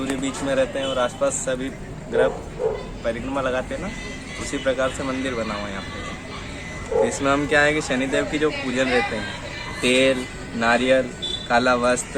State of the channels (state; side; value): identical; both; correlation 1.00